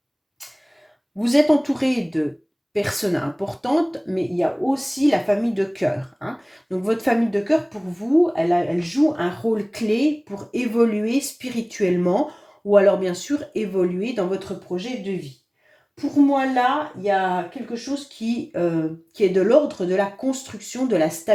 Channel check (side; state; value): both; identical; correlation 1.00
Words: vous êtes entouré de personnes importantes, mais il y a aussi la famille de cœur, hein. Donc votre famille de cœur, pour vous, elle joue un rôle clé pour évoluer spirituellement ou alors bien sûr évoluer dans votre projet de vie. Pour moi, là, il y a quelque chose qui est de l'ordre de la construction, de la